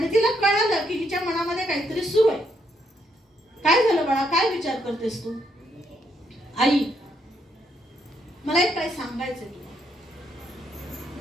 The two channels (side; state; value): both; normal; correlation 0.75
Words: तिला कळालं की हिच्या मनामध्ये काहीतरी सुरू आहे. काय झालं बाळा, काय विचार करतेस तू? आई, मला एक काय सांगायचंय तुला.